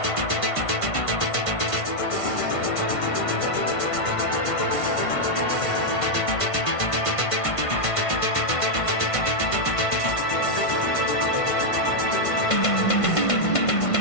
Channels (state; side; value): late; right; 1.5 ms